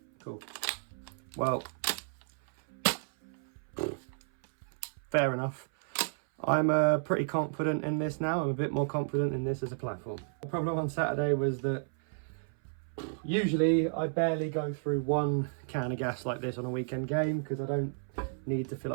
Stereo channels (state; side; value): silent; left; 56 dB below the other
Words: Cool. Well, fair enough. I'm pretty confident in this now. I'm a bit more confident in this as a platform. The problem on Saturday was that usually I barely go through one can of gas like this on a weekend game because I don't need to fill